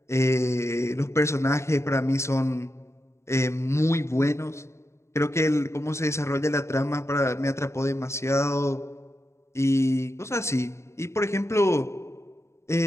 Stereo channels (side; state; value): right; late; 0.13 ms